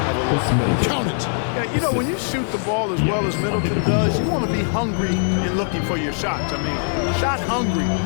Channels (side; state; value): right; silent; digital silence